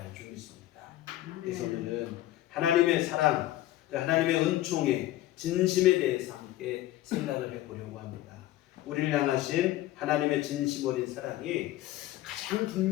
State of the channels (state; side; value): quieter; right; 15.1 dB